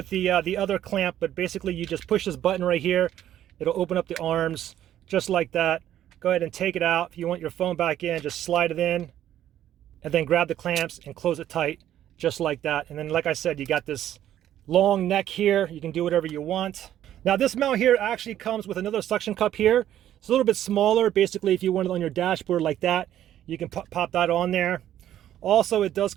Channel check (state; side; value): quieter; left; 11.7 dB